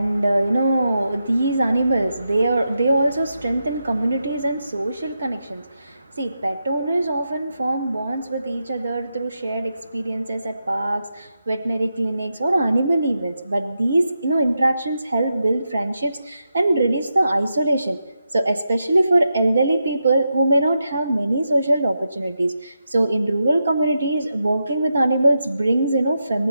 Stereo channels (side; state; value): both; inverted; correlation -0.86